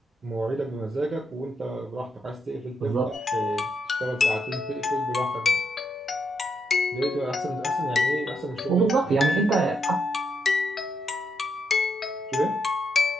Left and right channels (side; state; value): both; normal; correlation 0.80